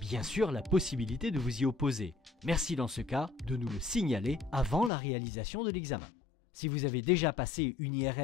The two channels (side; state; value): right; drops out; at 4.9 s